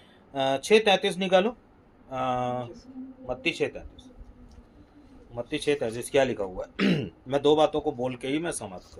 6:33 निकालो। मत्ती 6:33। मत्ती 6:33 क्या लिखा हुआ है? मैं 2 बातों को बोल के ही मैं समाप्त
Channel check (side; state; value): both; identical; correlation 1.00